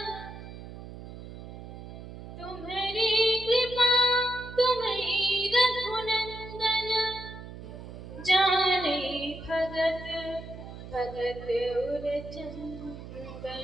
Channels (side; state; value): right; noise; hum, 12 dB below the sound